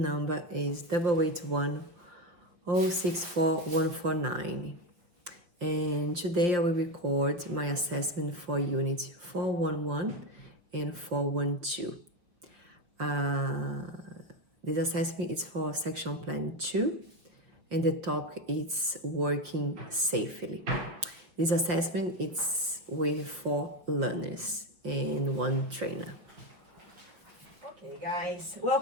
number is 881064149. And today I will record my assessment for Unit 411 and 412. This assessment is for Section Plan 2, and the topic is working safely. This assessment is with 4 learners and 1 trainer. Okay, guys,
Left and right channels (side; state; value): left; late; 5.7 ms